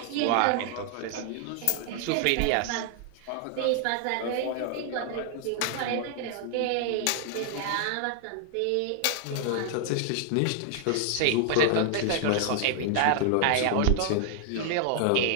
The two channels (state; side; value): different; both; correlation 0.00